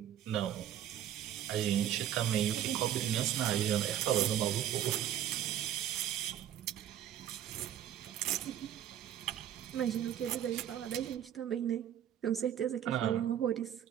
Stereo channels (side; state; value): left; quieter; 10.8 dB